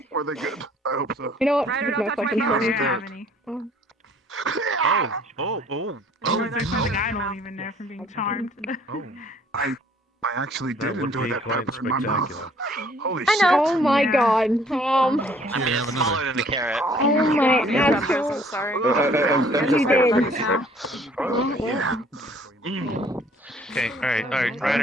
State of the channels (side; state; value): both; normal; correlation 0.58